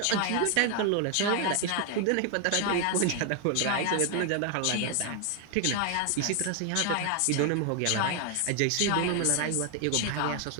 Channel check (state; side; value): different; both; correlation 0.00